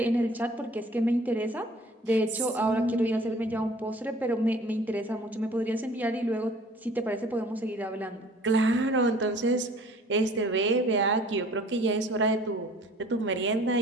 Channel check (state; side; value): normal; both; correlation 0.51